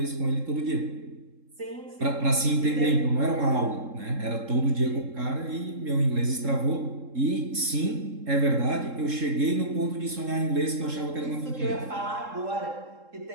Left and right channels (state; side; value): late; left; 3.7 ms